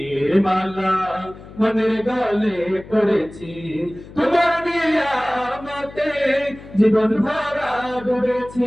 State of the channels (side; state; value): left; noise; hum, 18 dB below the sound